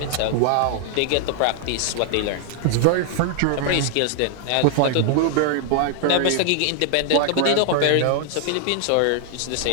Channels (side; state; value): both; different; correlation 0.00